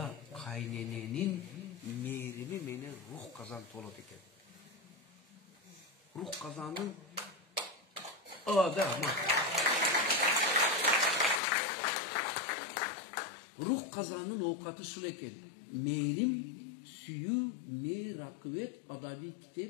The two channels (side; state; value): right; drops out; at 11.4 s